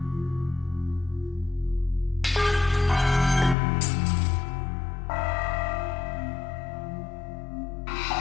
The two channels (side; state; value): right; drops out; at 3.6 s